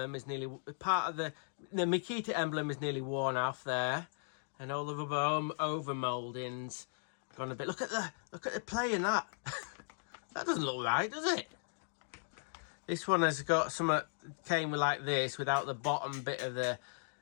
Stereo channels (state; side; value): silent; right; digital silence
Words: is nearly the MAKITA emblem is nearly worn off there, and all the rubber over mouldings gone a bit. Look at the play in that. That doesn't look right, does it? This one has got some came like this without the bottom bit of the